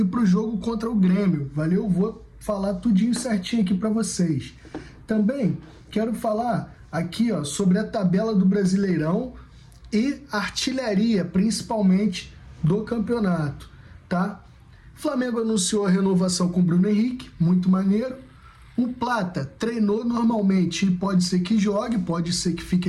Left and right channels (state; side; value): identical; both; correlation 1.00